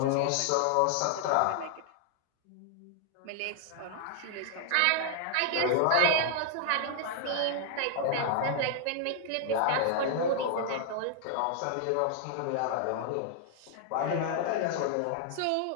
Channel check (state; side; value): different; both; correlation 0.00